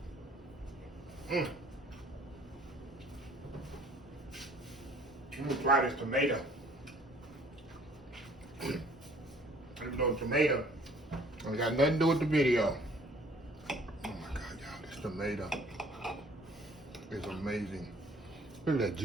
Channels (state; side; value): normal; both; correlation 0.56